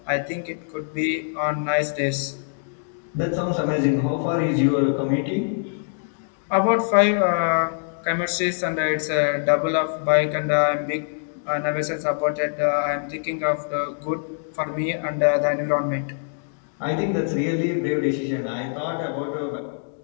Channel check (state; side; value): silent; right; digital silence